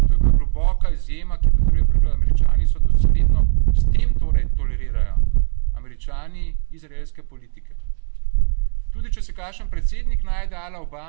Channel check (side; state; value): left; silent; 63 dB below the other